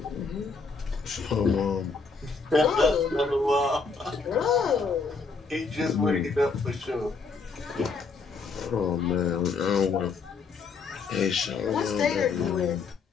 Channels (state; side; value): quieter; right; 4.7 dB